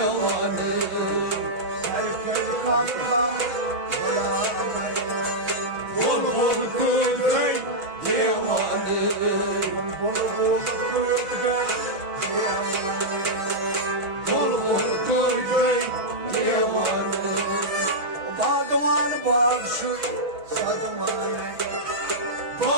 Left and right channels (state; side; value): late; left; 6.2 ms